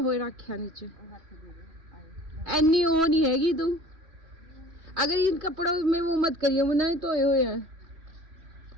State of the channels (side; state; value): left; late; 3.0 ms